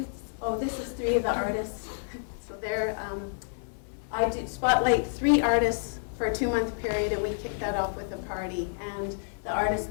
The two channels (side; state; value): right; silent; 58 dB below the other